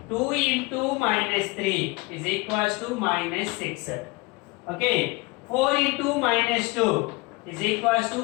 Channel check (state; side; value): quieter; right; 24.4 dB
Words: 2 into minus 3 is equals to minus 6. Okay. 4 into minus 2 is equals